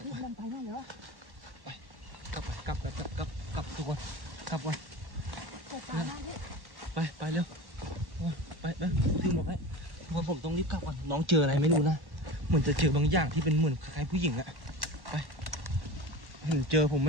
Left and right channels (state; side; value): late; left; 1.1 ms